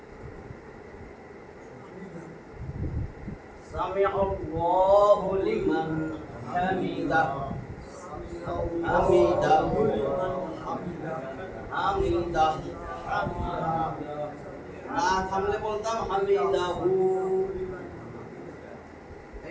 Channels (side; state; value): both; identical; correlation 1.00